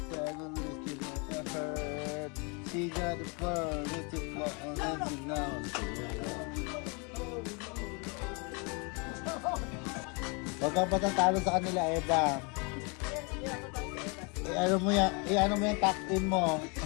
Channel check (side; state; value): right; quieter; 32.5 dB